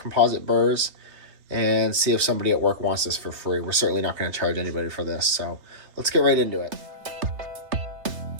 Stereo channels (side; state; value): left; late; 3.2 ms